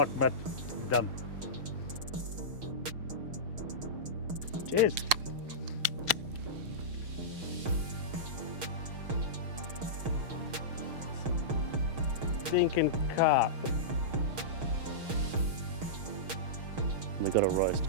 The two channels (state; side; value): late; left; 6.4 ms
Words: mat done. Cheers. Stinking carp. We got a roast